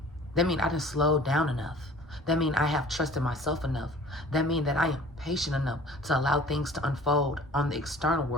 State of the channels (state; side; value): normal; both; correlation 0.48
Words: That means I didn't slow down enough. That means I have trusted myself enough. That means that I am patient enough to allow things to unfold on the external